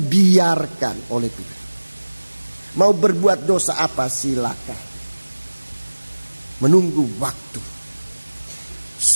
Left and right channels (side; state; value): both; inverted; correlation -1.00